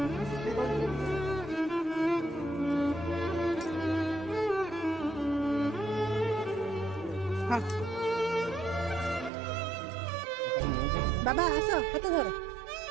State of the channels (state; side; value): drops out; left; at 9.3 s